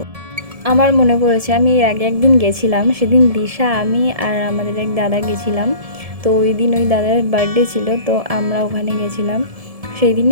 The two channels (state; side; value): late; left; 1.7 ms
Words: আমার মনে পড়েছে আমি এর আগে একদিন গেছিলাম, সেদিন দিশা, আমি আর আমাদের এক দাদা গেছিলাম। তো ওই দিন ওই দাদার বার্থডে ছিল, তো আমরা ওখানে গেছিলাম। সেই